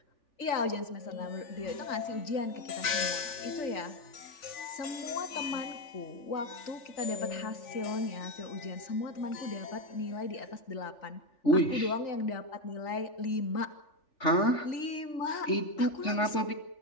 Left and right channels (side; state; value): right; late; 3.4 ms